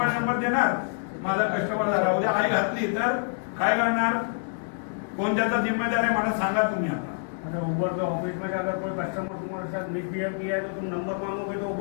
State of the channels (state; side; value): silent; right; digital silence